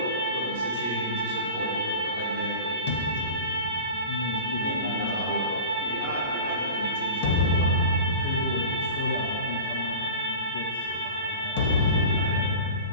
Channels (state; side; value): inverted; both; correlation -0.35